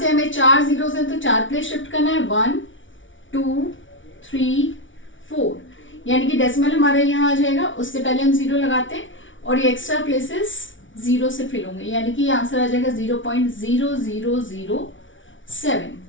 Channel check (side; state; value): right; late; 0.56 ms